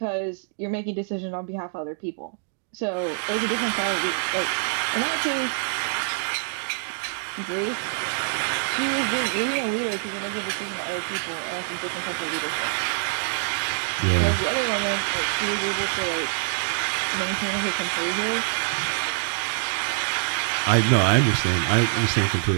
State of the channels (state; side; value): silent; left; digital silence